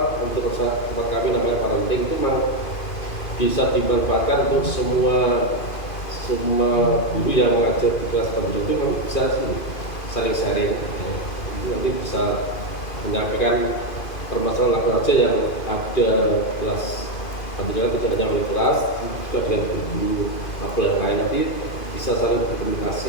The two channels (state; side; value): late; right; 2.4 ms